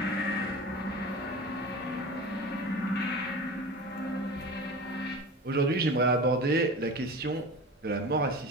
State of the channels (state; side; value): normal; both; correlation 0.33